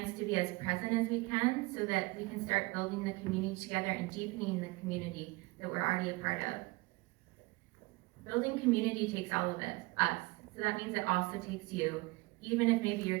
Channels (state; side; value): quieter; left; 24.0 dB